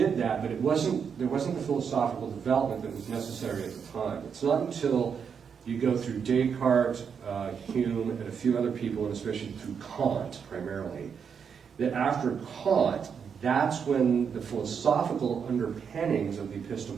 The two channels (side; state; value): left; quieter; 6.8 dB